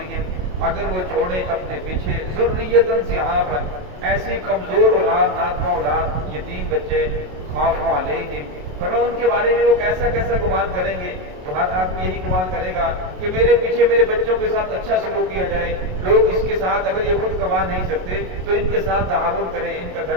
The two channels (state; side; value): late; left; 27 ms